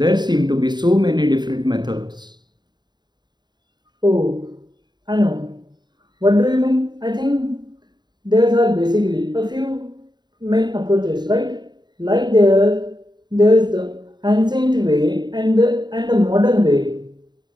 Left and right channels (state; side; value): late; left; 0.21 ms